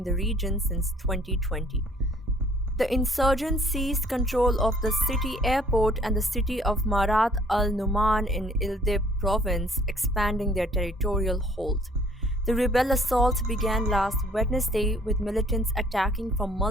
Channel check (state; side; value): normal; both; correlation 0.58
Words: the region since 2020. The insurgents seized control of the city airport and the city of Marat al-Numan in Idlib province, expanding their territorial hold. The rebel assault began last Wednesday with militants attacking from